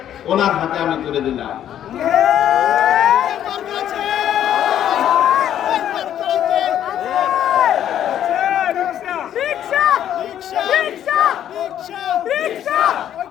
ওনার হাতে আমি তুলে দিলাম।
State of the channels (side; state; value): right; quieter; 10.7 dB